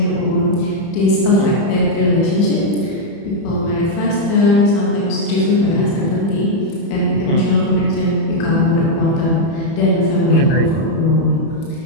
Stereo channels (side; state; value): right; late; 30 ms